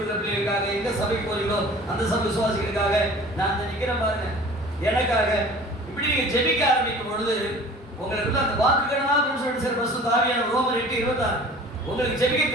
பிள்ளைகளுக்காக, எங்க சபைக்கு போறீங்களோ அந்த சபை விசுவாசிகளுக்காக நான் அந்த நிக்கிறேன் பாருங்க, எனக்காக இப்படி நீங்க ஜெபிக்க ஆரம்பிக்கும் பொழுது உங்களுக்கு அந்த வாக்குகளாக சொல்லிட்டு பரிசுத்த ஆவியான ரோமர் 8:26 உங்களுக்கு ஜெபிக்க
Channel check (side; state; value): both; normal; correlation 0.44